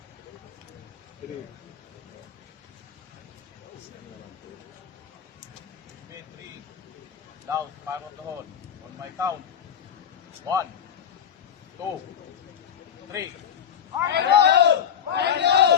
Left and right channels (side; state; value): right; quieter; 8.5 dB